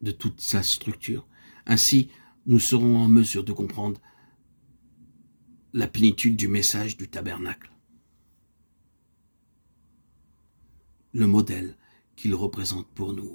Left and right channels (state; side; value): inverted; both; correlation -1.00